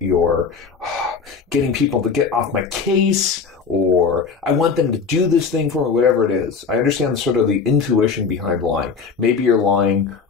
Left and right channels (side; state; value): right; quieter; 5.4 dB